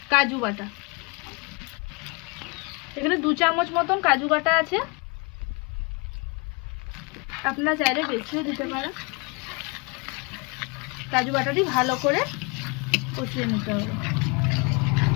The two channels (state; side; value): quieter; right; 31.0 dB